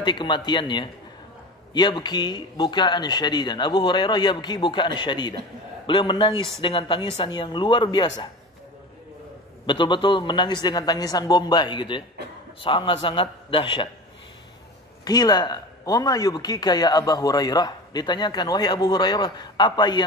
kematiannya, yabki bukaan syadidan. Abu Hurairah yabki bukaan syadidan. Beliau menangis dengan tangisan yang luar biasa. Betul-betul menangis dengan tangisan Bombay gitu ya. Sangat-sangat dahsyat. Qila, "Wa ma yubkika ya Abu Hurairah?" Ditanyakan, "Wahai Abu Hurairah, apa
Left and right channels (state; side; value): normal; both; correlation 0.32